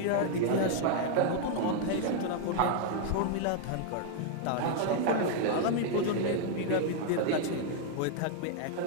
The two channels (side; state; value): both; different; correlation 0.00